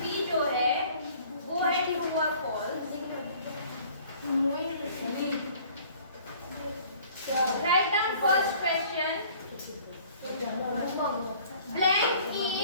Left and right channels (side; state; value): both; inverted; correlation -0.53